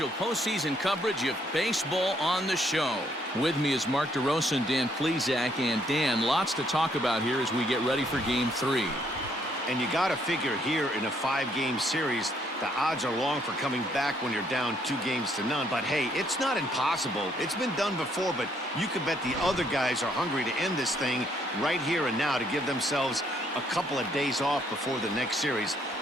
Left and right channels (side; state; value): both; normal; correlation 0.69